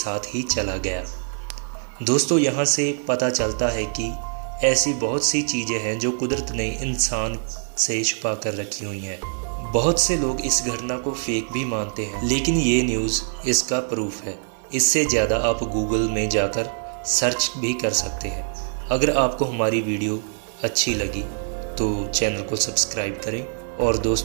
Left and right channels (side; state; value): left; silent; 63 dB below the other